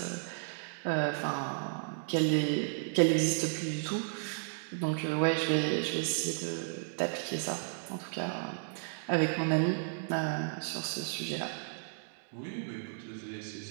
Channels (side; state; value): left; silent; digital silence